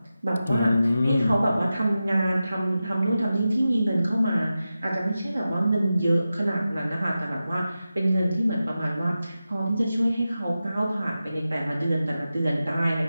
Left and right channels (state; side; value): inverted; both; correlation -0.93